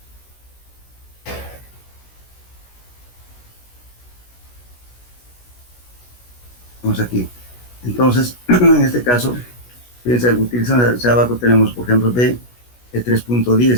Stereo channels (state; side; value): late; right; 16 ms